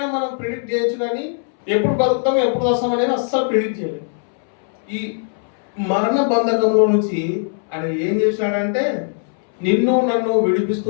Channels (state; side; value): silent; right; 66 dB below the other